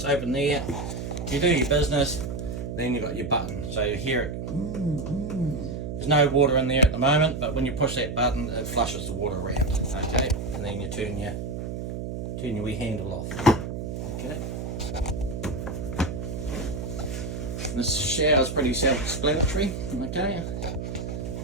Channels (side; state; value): right; noise; hum, 5 dB below the sound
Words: open there. You do your business, then you've got your button, so you hear it. There's no water in there at the moment, but when you push that button, it flushes the water around. Okay, and then you turn your wee handle off. Okay. This shower is pretty self-explanatory. Okay,